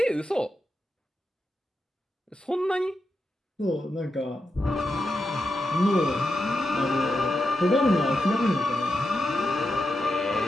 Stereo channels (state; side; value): normal; both; correlation 0.87